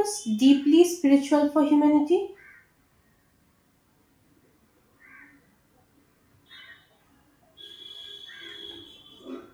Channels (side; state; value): both; identical; correlation 1.00